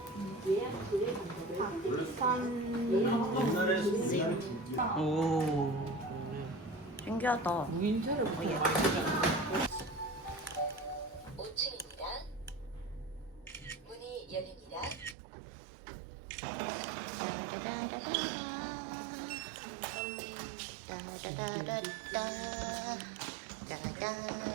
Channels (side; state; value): left; drops out; at 15.2 s